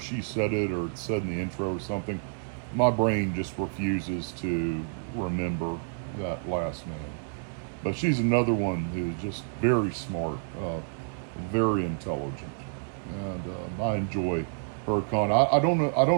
said it, or it's said in the intro or something. My brain just refuses to remember that last name. But she's another one who's just very smart, very intelligent, and I enjoy her content. I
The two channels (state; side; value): silent; left; digital silence